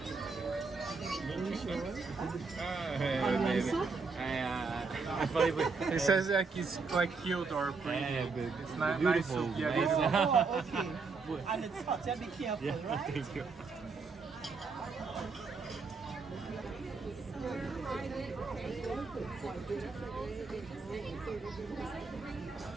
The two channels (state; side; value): quieter; left; 4.5 dB